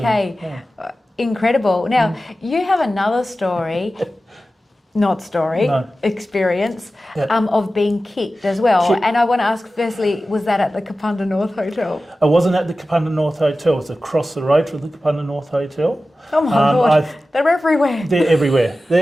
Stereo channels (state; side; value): normal; both; correlation 0.95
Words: yeah. Incredible. Now, you have another story, No. experience Yeah. of being kicked as well. Kicked. And I want to ask firstly, was that at the Kapunda North Hotel? I wasn't at the Kapunda North Hotel. It was across the road from the Kapunda North Hotel. Oh my God, I've- they're everywhere. They're everywhere.